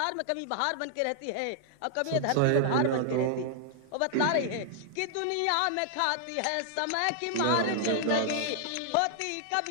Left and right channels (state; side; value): different; both; correlation -0.01